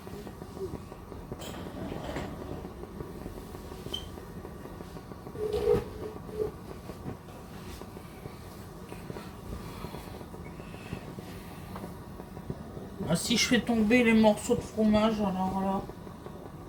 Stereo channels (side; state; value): both; identical; correlation 1.00